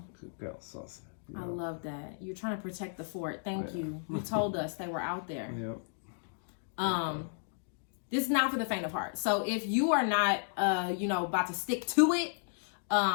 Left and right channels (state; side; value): silent; right; digital silence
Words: Good girl, Saucy. I love that. You're trying to protect the fort. Thank you. You told us they were out there. Yep. This is not for the faint of heart. So if you are not, you know, about to stick to it,